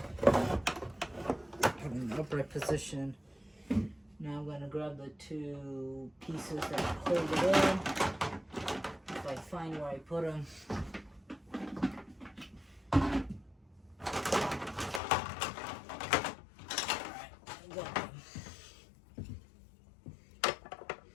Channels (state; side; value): drops out; right; at 15.0 s